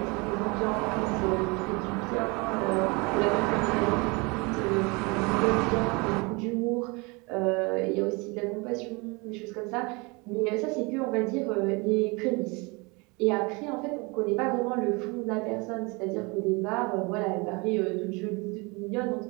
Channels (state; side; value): quieter; left; 27.8 dB